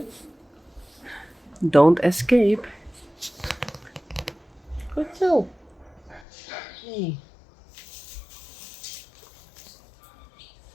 don't escape. Good so. Hey.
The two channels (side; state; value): right; drops out; at 6.2 s